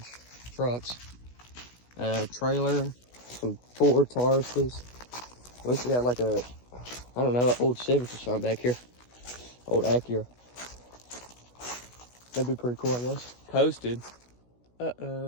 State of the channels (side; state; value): right; late; 16 ms